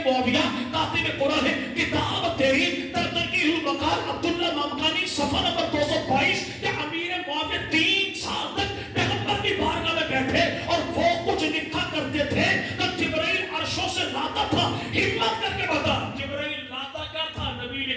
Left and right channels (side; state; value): both; identical; correlation 1.00